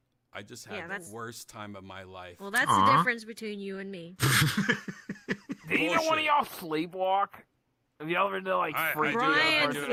I just had the worst time of my life. Well, that's the difference between you and me. Did either one of y'all sleepwalk? And the other day, freak Brian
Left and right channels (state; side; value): identical; both; correlation 1.00